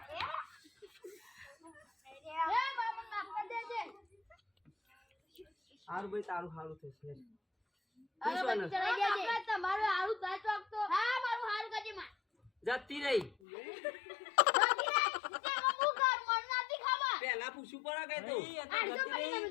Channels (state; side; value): drops out; right; at 13.4 s